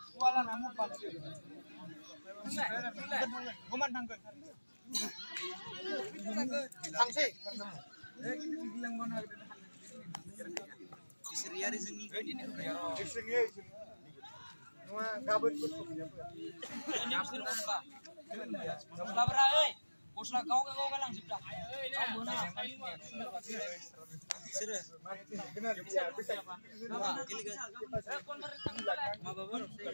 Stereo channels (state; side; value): inverted; both; correlation -1.00